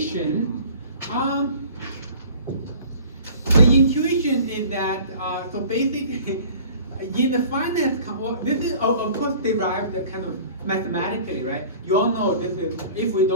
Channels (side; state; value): both; inverted; correlation -0.47